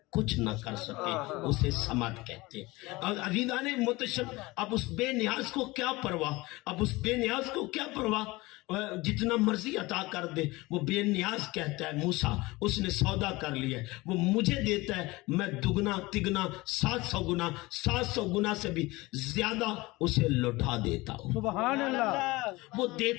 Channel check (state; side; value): quieter; right; 21.5 dB